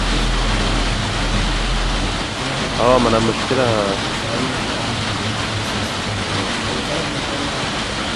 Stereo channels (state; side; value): identical; both; correlation 1.00